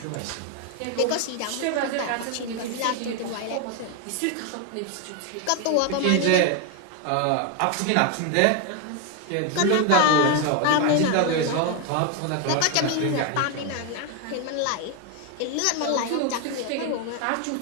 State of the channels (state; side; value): different; both; correlation 0.01